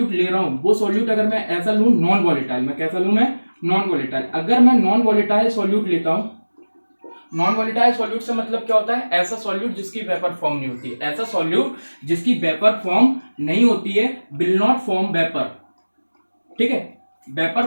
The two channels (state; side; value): inverted; both; correlation -1.00